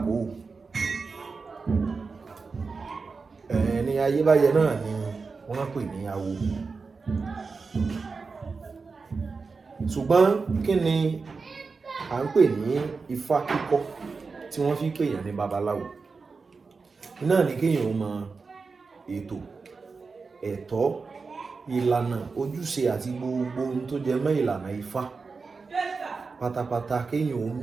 ẹni ayébáyé náà ni wọ́n pè ní awo. Ṣùgbọ́n kí ni à ń pè ní ifá kíkọ́ tí wọ́n fi pèèyàn ní babaláwo? Náà ni kéèyàn mọ ètò, ẹ̀tọ́, ìlànà, ojúṣe àti gbogbo ohun tó jẹ mọ́ ìlànà ifá pátápátá. Kéèyàn ó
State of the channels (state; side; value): quieter; left; 4.6 dB